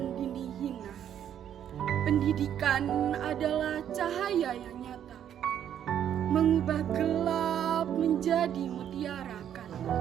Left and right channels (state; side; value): quieter; left; 9.8 dB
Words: dinding hina. Pendidikan adalah cahaya yang nyata, mengubah gelap menjadi mutiara kan.